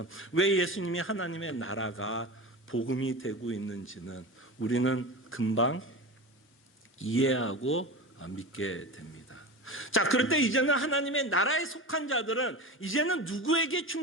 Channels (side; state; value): both; normal; correlation 0.28